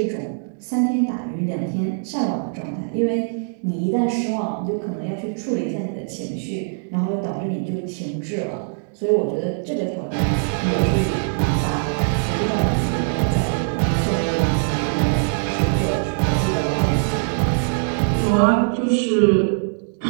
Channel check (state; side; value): silent; left; digital silence